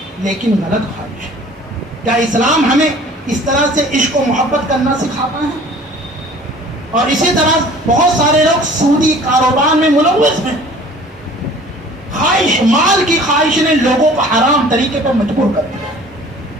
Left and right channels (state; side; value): normal; both; correlation 0.49